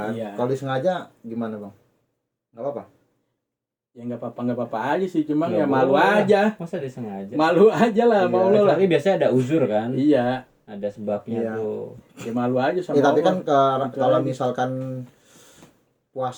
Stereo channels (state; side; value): identical; both; correlation 1.00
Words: Iya. Kalau disengaja gimana Bang? Nggak apa-apa. Ya nggak apa-apa aja sih, cuma Nggak ya malu boleh. aja. Masa disengaja? Malu aja lah, Iya, mau lo lah. Tapi biasanya ada uzur kan? Iya, Ada sebabnya Iya. tuh. ya malu aja sama Ya, tapi Allah. kan Gitu kalau aja. misalkan